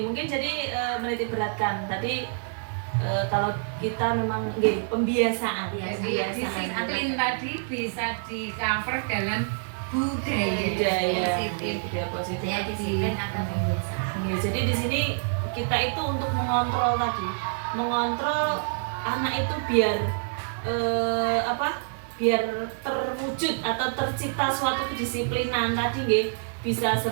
mungkin jadi menitik beratkan tadi kalau kita memang pembiasaan. Jadi disiplin tadi bisa di cover dalam budaya positif. Budaya positif. Budaya disiplin atau pembiasaan. Ya, jadi di sini kita itu untuk mengontrol tadi, mengontrol anak itu biar biar terwujud atau tercipta suatu kedisiplinan tadi nggih, bisa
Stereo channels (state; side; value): silent; left; digital silence